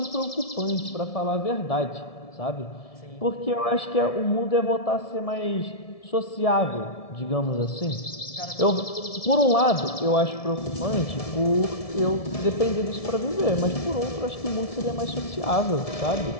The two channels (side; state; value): right; late; 1.7 ms